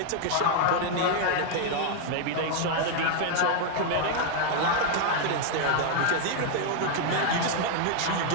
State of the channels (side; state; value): both; different; correlation 0.00